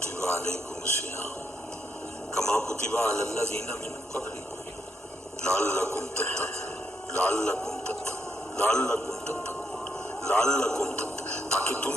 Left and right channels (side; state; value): both; normal; correlation 0.78